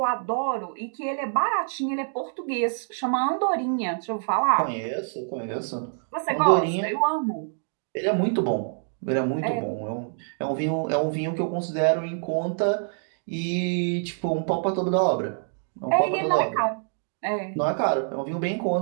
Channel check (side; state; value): left; silent; digital silence